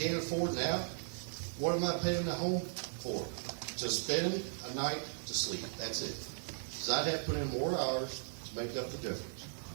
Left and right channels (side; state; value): left; silent; 53 dB below the other